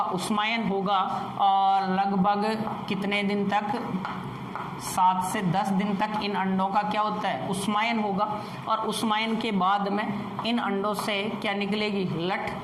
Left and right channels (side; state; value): both; identical; correlation 1.00